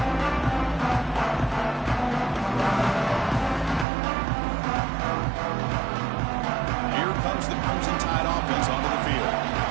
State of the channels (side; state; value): left; drops out; at 3.9 s